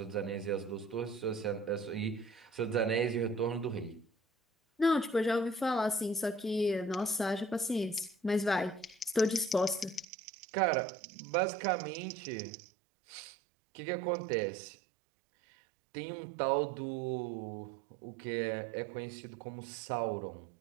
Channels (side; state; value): left; drops out; at 10.1 s